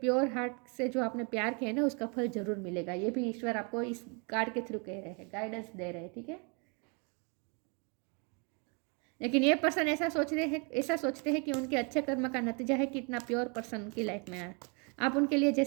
हार्ट से जो आपने प्यार किया है ना, उसका फल ज़रूर मिलेगा। ये भी ईश्वर आपको इस कार्ड के थ्रू कह रहे हैं, गाइडेंस दे रहे हैं, ठीक है। लेकिन ये पर्सन ऐसा सोचते हैं कि उनके अच्छे कर्म का नतीजा है कि इतना प्योर पर्सन उनकी लाइफ में आया। आप उनके लिए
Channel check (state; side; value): quieter; left; 34.4 dB